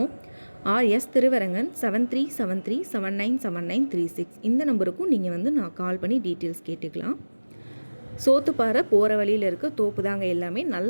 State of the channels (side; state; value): both; inverted; correlation -1.00